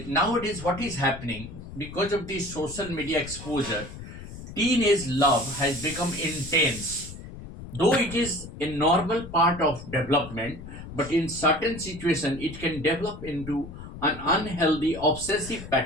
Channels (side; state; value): left; noise; rumble, 12 dB below the sound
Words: Nowadays, what is happening because of the social media exposure, teenage love has become intense. Though it is a normal part of development, but in certain situations it can develop into an unhealthy obsessive